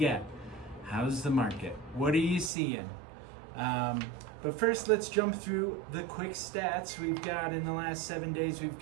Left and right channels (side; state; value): left; drops out; at 2.5 s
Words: How's the market? What are you seeing? But first, let's jump through the quick stats. We've got in the last 7 days, we've